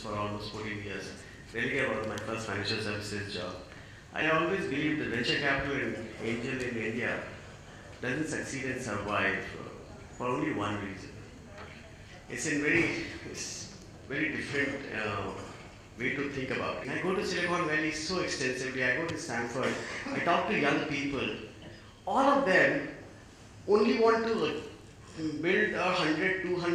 for almost 14 years. Religare was my first financial services job. I always believe that venture capital and angel in India doesn't succeed and survive for only one reason. It's very different way to think about it. I go to Silicon Valley so extensively. I go to Stanford. I talk to young people. All of them only want to build a 100,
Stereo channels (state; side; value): identical; both; correlation 1.00